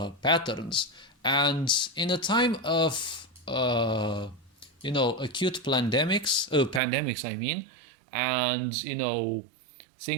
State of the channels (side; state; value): left; drops out; at 6.8 s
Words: patterns. And in a time of, acute pandemics, I mean, and,